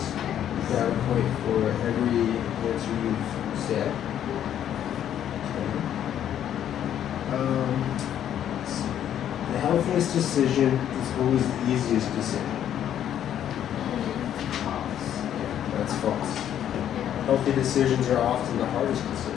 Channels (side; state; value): right; quieter; 10.3 dB